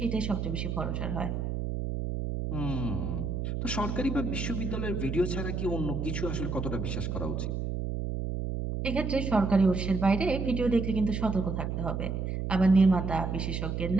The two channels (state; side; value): noise; right; hum, 2 dB below the sound